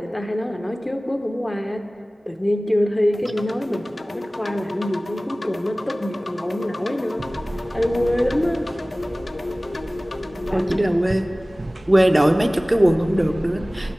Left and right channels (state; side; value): normal; both; correlation 0.98